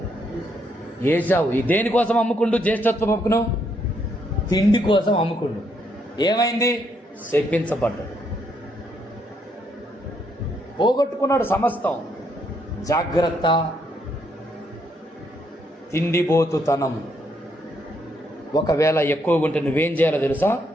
ఏశావు. ఈ దేనికోసం అమ్ముకుండు? జ్యేష్ఠత్వ హక్కును తిండి కోసం అమ్ముకుండు. ఏమైంది? శపించబడ్డాడు, పోగొట్టుకున్నాడు సమస్తం. జాగ్రత్త. తిండిపోతుతనం ఒకవేళ ఎక్కువగా ఉంటే నువ్వేం చేయాలో తెలుసా?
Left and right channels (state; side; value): normal; both; correlation 0.74